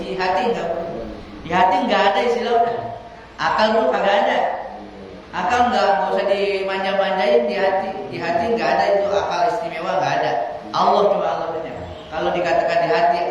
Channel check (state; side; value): identical; both; correlation 1.00